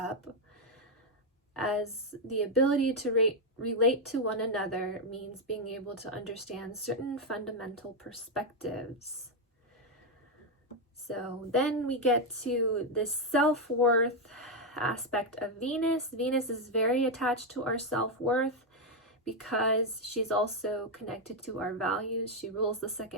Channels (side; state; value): both; normal; correlation 0.03